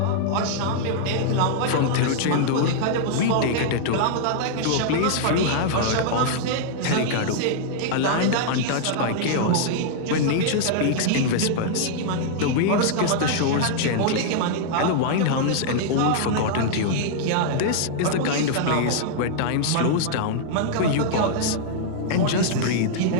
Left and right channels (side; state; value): both; different; correlation -0.01